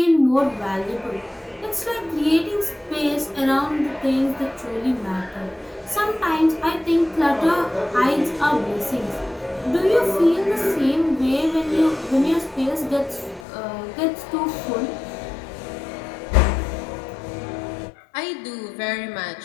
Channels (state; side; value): drops out; right; at 13.5 s